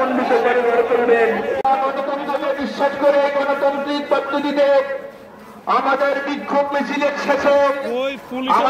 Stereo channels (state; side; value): identical; both; correlation 1.00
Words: করে গড়ে তুলবেন। গণতন্ত্রকে বিশ্বাস করে গণতান্ত্রিক পদ্ধতিতে আমাদের বিক্ষোভ মিছিলের শেষে